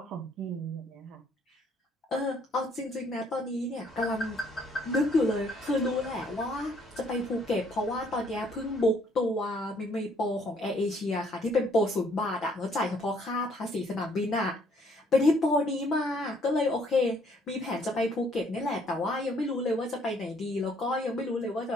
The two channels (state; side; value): normal; both; correlation 0.65